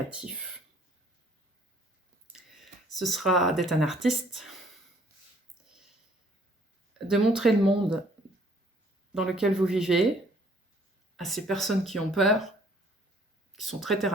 Ce sera d'être un artiste, de montrer le monde dans lequel vous vivez à ces personnes qui ont peur, qui sont très terre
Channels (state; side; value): normal; both; correlation 0.60